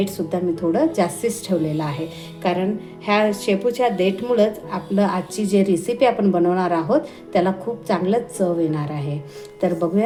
मी थोडं जास्तीच ठेवलेलं आहे, कारण ह्या शेपूच्या देठमुळंच आपलं आजची जे रेसिपी आपण बनवणार आहोत त्याला खूप चांगलं चव येणार आहे. तर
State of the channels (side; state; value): both; identical; correlation 1.00